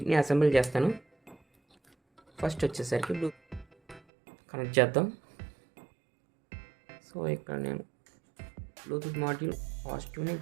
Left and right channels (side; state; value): left; drops out; at 4.0 s